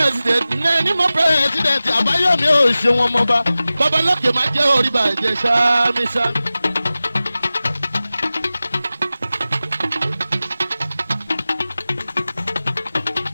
ẹni mo pírẹsidẹ̀ntì Àbáyọ̀mí ò ṣe wọn mọba babalókè máa jẹ́ orí bàjẹ́ sáámísá.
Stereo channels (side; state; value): both; inverted; correlation -0.96